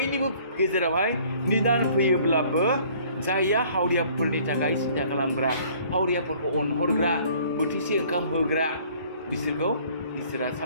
गेजेरावहाय निदान फैयोब्लाबो जायया हावरियाफोरनि थाखाय सिन्था खालामग्रा हावरियाफोरखौ अनहरग्रा बोथिसे ओंखाम होग्रा बिसोरखौ इसोरा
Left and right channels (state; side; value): inverted; both; correlation -0.56